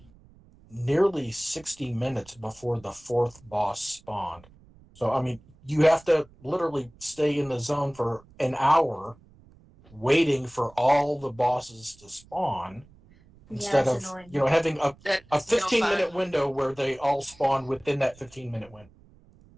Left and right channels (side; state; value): right; noise; rumble, 26 dB below the sound